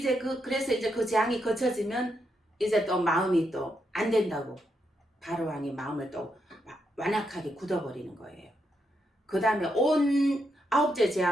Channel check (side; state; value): both; normal; correlation 0.81